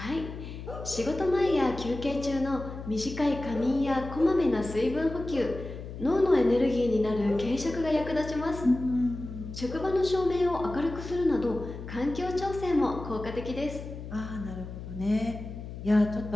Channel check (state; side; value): noise; left; hum, 10 dB below the sound